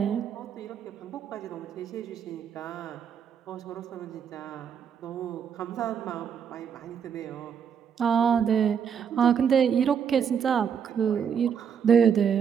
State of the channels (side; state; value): left; quieter; 7.6 dB